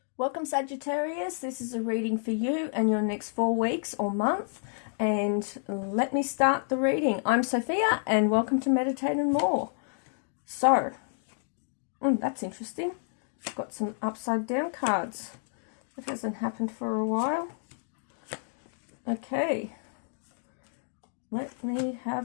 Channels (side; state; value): right; silent; digital silence